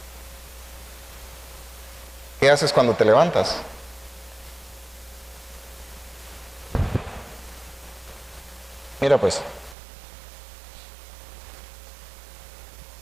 ¿Qué haces cuando te levantas? Mira pues.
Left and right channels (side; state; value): left; drops out; at 9.8 s